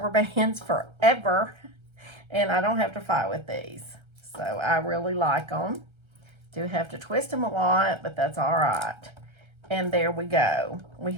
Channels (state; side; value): late; left; 1.3 ms